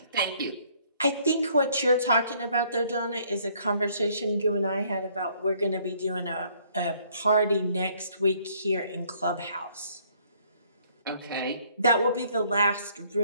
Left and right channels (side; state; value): both; inverted; correlation -0.63